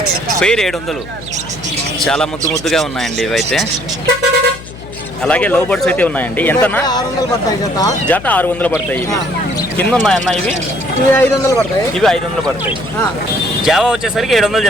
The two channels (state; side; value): noise; left; hum, 15 dB below the sound